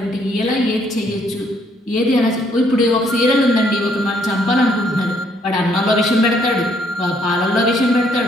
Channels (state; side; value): normal; both; correlation 0.68